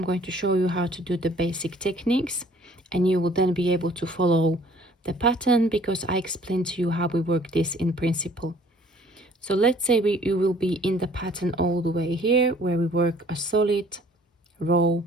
going to show you how to do the basic techniques, and you will then be able to follow the pattern because I explained to you how we work this in principle. So let's say you will be in the pattern all the way here where we work a solid row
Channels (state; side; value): normal; both; correlation 0.55